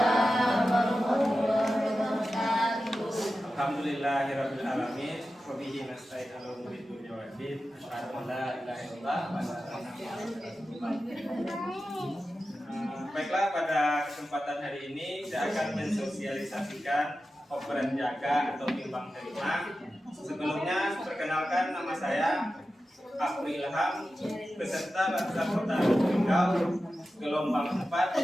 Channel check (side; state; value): both; normal; correlation 0.93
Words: warahmatullahi wabarakatuh. Alhamdulillahirabbil alamin. Wa bihi nasta'in 'ala umuri dunya waddin. Asyhadu an la ilaha illallah wa asyhadu anna Muhammadan rasulullah. Baiklah, pada kesempatan hari ini saya akan mensosialisasikan operan jaga atau timbang terima. Sebelumnya perkenalkan, nama saya Afri Ilham, peserta Laskar Kota Riau, gelombang